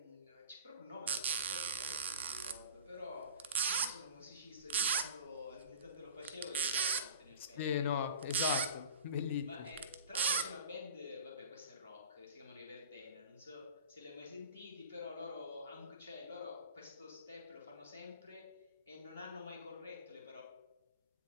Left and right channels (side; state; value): both; inverted; correlation -0.38